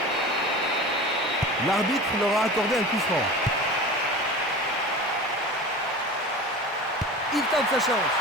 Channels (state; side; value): normal; both; correlation 0.34